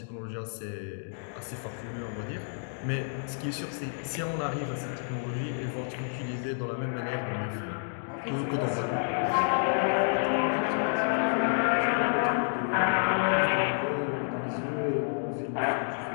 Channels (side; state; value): right; silent; digital silence